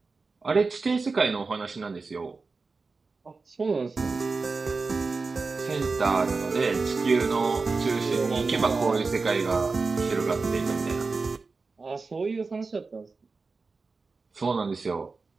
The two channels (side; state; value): left; quieter; 4.2 dB